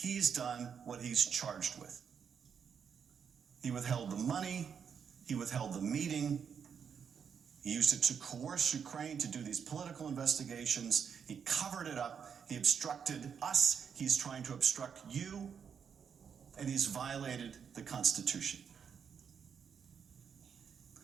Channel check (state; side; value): quieter; left; 7.1 dB